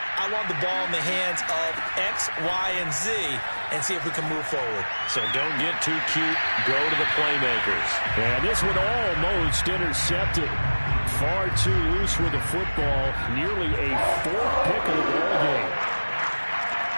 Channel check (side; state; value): both; inverted; correlation -1.00